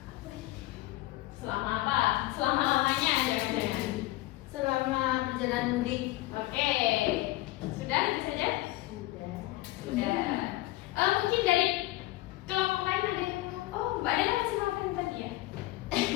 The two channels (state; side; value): quieter; right; 18.4 dB